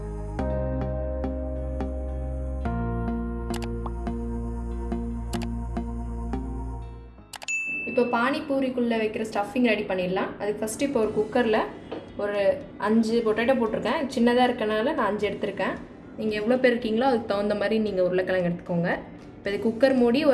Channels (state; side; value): identical; both; correlation 1.00